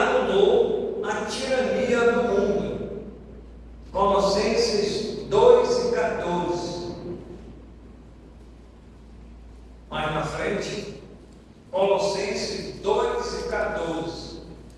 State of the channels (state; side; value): identical; both; correlation 1.00